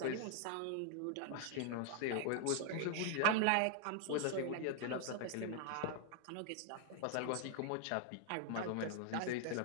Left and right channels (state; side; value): different; both; correlation 0.00